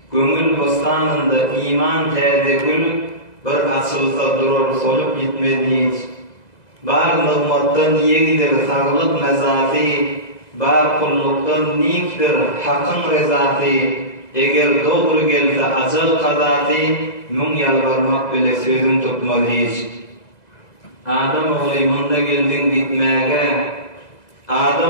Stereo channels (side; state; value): right; late; 2.0 ms